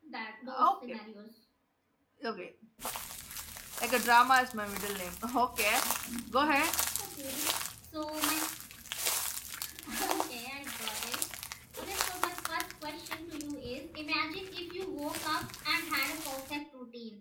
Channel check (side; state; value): both; identical; correlation 1.00